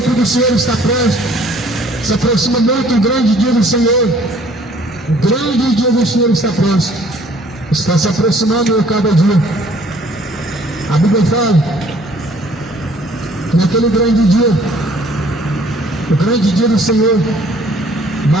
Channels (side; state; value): both; normal; correlation 0.57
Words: do Senhor está próximo, se aproxima muito o grande dia do Senhor. O grande dia do Senhor está próximo, está se aproximando a cada dia. A Bíblia fala que naquele grande dia, o grande dia do Senhor,